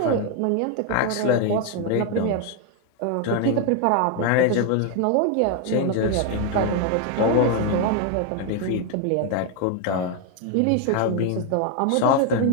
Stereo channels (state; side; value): different; both; correlation 0.01